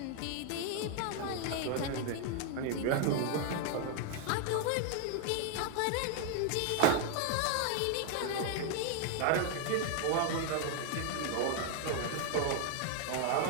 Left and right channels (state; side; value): different; both; correlation 0.01